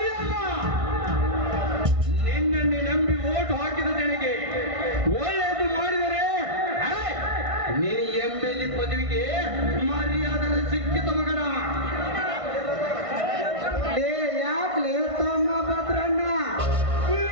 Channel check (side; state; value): left; late; 1.5 ms